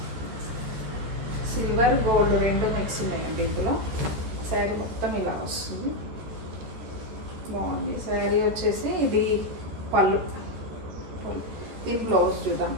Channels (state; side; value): late; left; 14 ms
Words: సిల్వర్ గోల్డ్ రెండు మిక్స్ ఉన్నాయండి. ఇందులో శారీ మొత్తం ఇలా వస్తుంది. బాగుంది. శారీ వచ్చేసి ఇది పళ్ళు. దీని బ్లౌజ్ చూద్దాం.